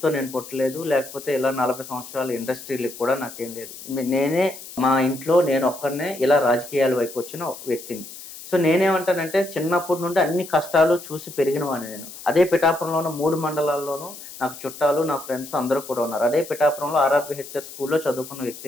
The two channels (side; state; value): left; noise; hiss, 14 dB below the sound